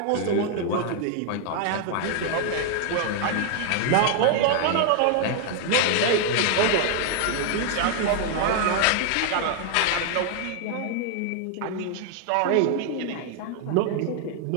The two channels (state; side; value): different; both; correlation 0.00